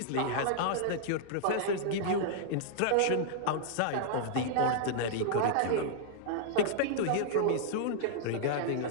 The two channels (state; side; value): different; both; correlation -0.01